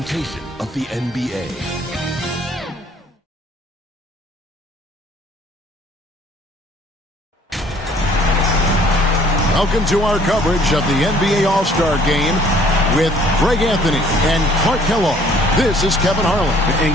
of the NBA. Welcome to our coverage of the NBA All-Star Game with Greg Anthony and Clark Kellogg. This is Kevin Harlan. And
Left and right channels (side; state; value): both; normal; correlation 0.57